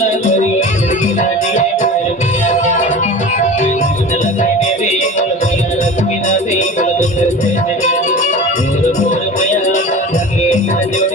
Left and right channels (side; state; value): both; normal; correlation 0.35